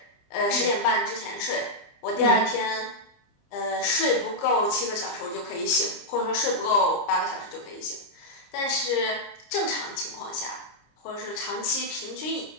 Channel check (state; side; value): late; right; 30 ms